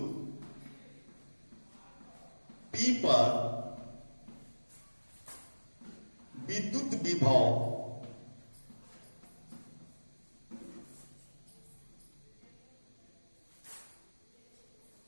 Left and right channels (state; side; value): inverted; both; correlation -1.00